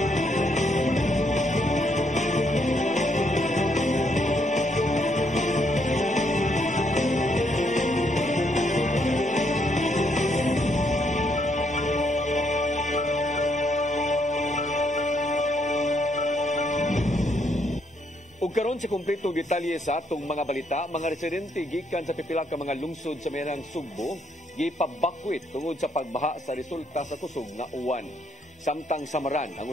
Ug karon sa kumpleto detalye sa atong mga balita, mga residente gikan sa pipila ka mga lungsod sa merang Sugbo gipabakwit tungod sa pagbaha sa resulta sa kusog nga uwan. Samtang Samaran ang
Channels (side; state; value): both; normal; correlation 0.73